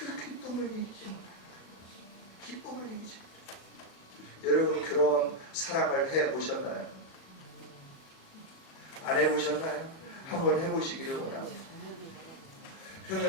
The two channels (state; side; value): late; right; 37 ms